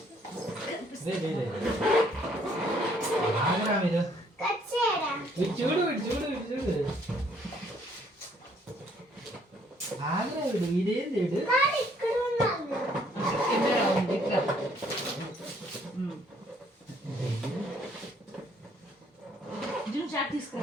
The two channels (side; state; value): both; normal; correlation 0.64